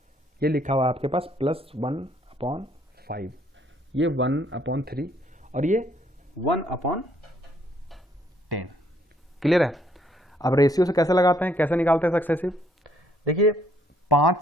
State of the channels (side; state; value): both; normal; correlation 0.67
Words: ये लिखा हुआ है आपके पास +1/5, ये 1/3 और ये 1/10। क्लियर है? अब रेशियो से कैसे लगाते हैं, कैसे निकालते हैं सक्सेसिव? देखिए 5